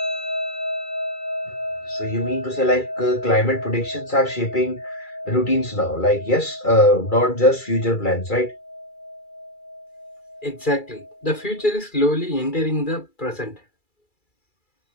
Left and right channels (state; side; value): late; right; 2.3 ms